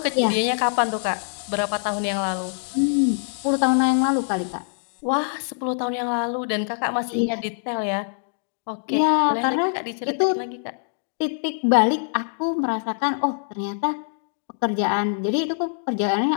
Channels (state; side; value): silent; right; digital silence